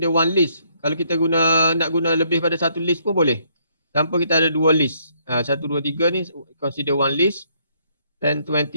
one list. Kalau kita nak guna lebih pada satu list pun boleh. Tanpa kita ada dua list. 1, 2, 3 ni consider one list. 10,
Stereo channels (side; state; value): both; inverted; correlation -0.69